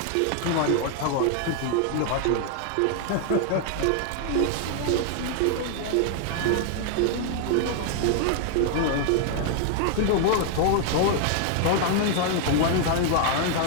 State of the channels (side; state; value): both; different; correlation 0.00